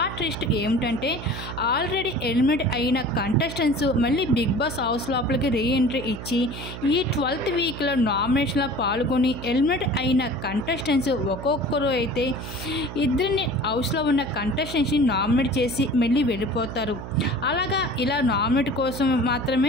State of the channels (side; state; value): right; noise; hum, 10 dB below the sound